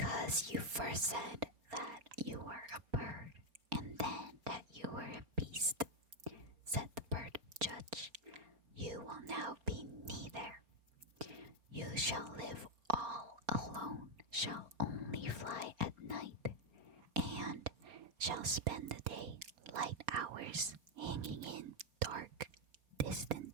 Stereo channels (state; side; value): late; left; 4.3 ms